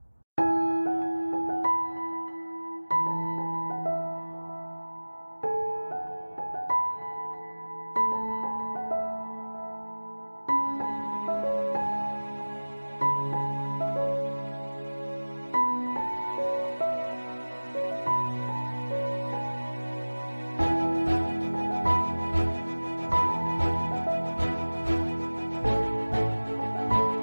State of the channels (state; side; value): inverted; both; correlation -1.00